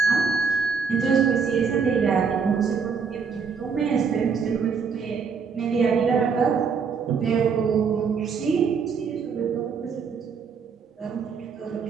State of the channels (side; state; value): left; quieter; 5.8 dB